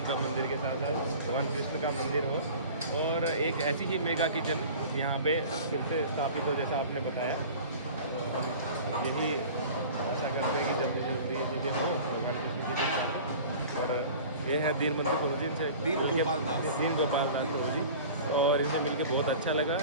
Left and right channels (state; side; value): inverted; both; correlation -0.41